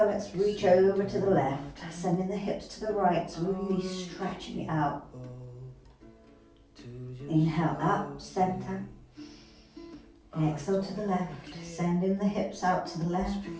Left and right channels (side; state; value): both; identical; correlation 1.00